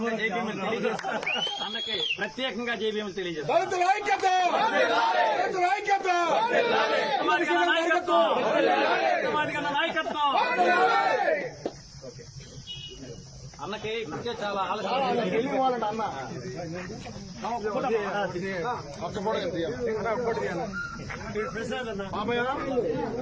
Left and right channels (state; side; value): identical; both; correlation 1.00